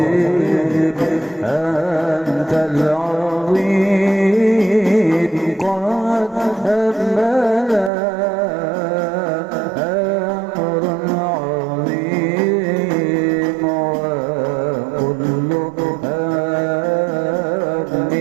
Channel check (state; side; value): drops out; left; at 7.9 s